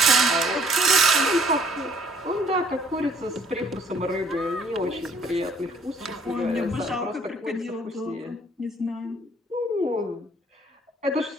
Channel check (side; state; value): both; normal; correlation 0.59